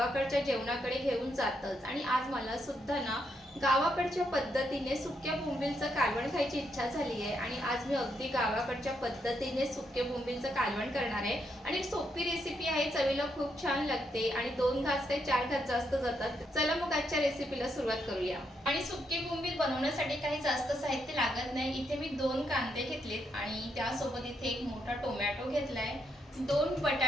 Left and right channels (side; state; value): both; normal; correlation 0.79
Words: जेवणाकडे घेऊन जातच. आणि आज मला सुद्धा ना गावाकडच्या पद्धतीने सुक्या बोंबिलचं कालवण खायची इच्छा झाली आहे. आणि आज मी अगदी गावाकडच्या पद्धतीने सुके बोंबिलचं कालवण करणार आहे. आणि एक सोपी रेसिपी आहे, चवीला खूप छान लागते आणि 2 घास ते 4 घास जास्त जातात. चला मग आजच्या रेसिपीला सुरुवात करूया. आणि सुके बोंबील बनवण्यासाठी काही जास्त साहित्य लागत नाही. इथे मी 2 कांदे घेतलेत आणि त्यासोबत इथे एक मोठा टोमॅटो घेतलाय, 2